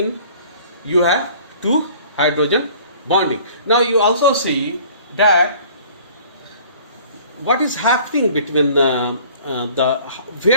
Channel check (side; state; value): both; inverted; correlation -0.51